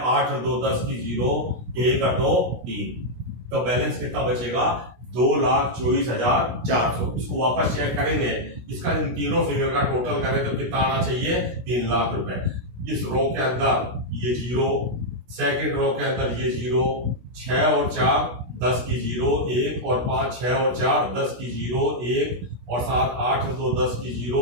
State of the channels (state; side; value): late; left; 16 ms